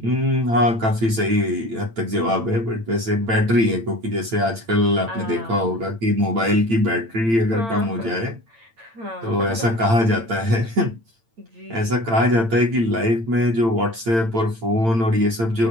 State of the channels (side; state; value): left; late; 8.8 ms